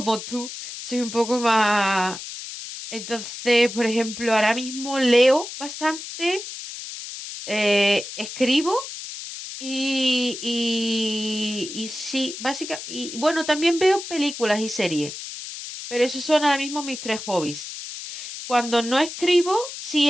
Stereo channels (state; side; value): noise; left; hiss, 10 dB below the sound